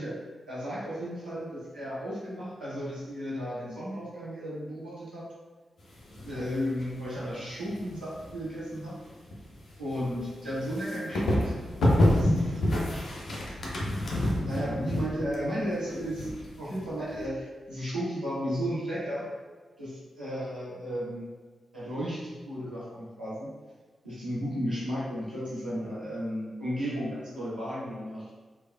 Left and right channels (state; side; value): normal; both; correlation 0.88